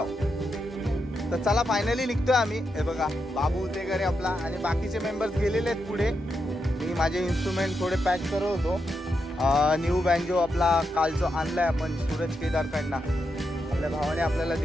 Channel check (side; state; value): both; normal; correlation 0.84